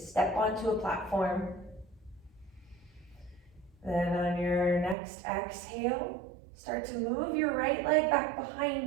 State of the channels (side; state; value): left; drops out; at 5.0 s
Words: onto a platform. Then on your next exhale, start to move your right leg back